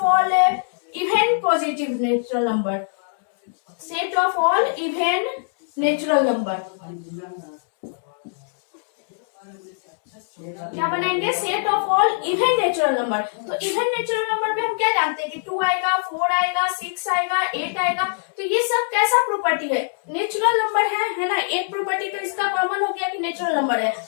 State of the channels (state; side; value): silent; right; digital silence